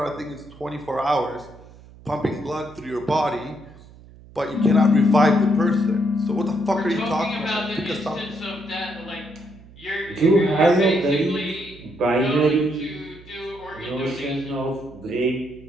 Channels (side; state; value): right; noise; hum, 21 dB below the sound